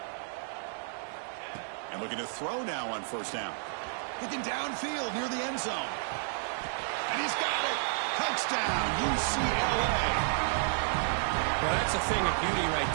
And looking to throw now on first down. Looking downfield near the end zone. And he's got it. Touchdown, UCLA. Well, that's a thing of beauty right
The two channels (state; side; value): silent; left; digital silence